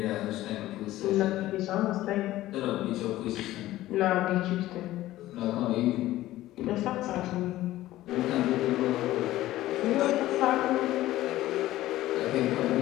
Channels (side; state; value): right; quieter; 15.5 dB